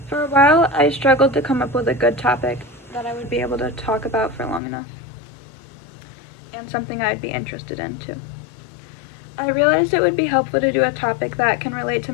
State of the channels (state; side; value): drops out; right; at 4.6 s